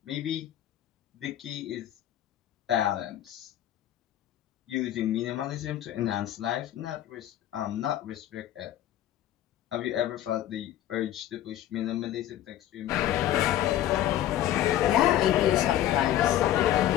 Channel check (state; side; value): quieter; right; 12.5 dB